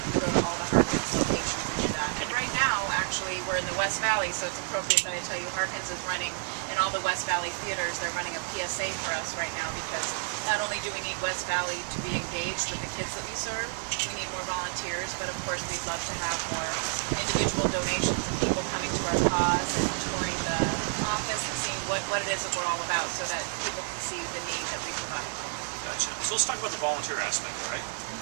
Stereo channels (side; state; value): left; silent; 58 dB below the other